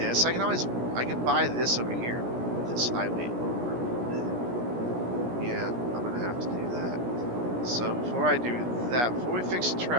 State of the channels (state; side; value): late; left; 17 ms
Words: I can buy this over here. This highway over. Yeah, I'm going to have to do that. So before I do that, before we fix